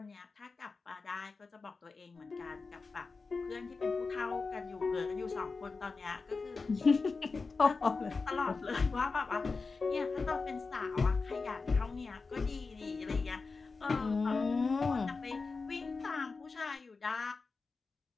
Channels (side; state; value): right; quieter; 4.3 dB